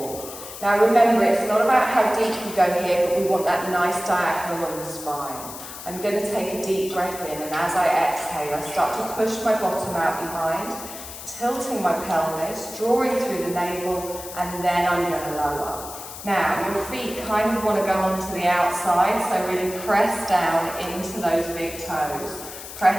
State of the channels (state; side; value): noise; left; hiss, 12 dB below the sound